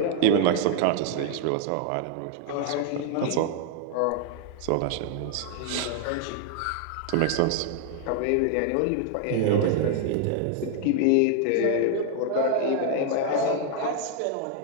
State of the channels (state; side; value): different; both; correlation 0.00